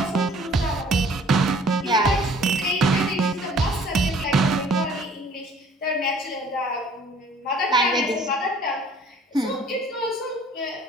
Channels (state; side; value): normal; both; correlation 0.54